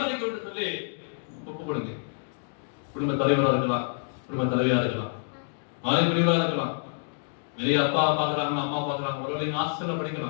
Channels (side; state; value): right; silent; digital silence